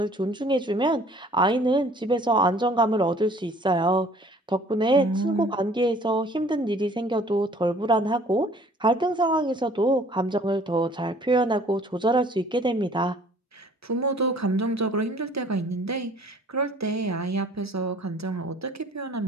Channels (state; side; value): normal; both; correlation 0.54